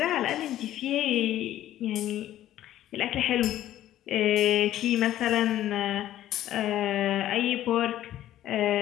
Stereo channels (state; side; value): quieter; right; 13.0 dB